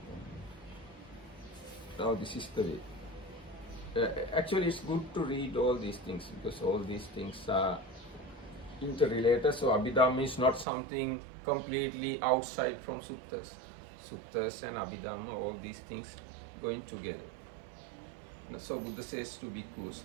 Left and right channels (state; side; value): drops out; left; at 10.7 s